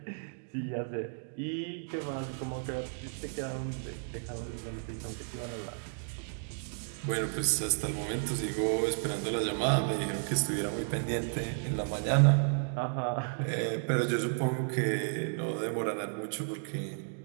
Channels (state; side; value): silent; left; digital silence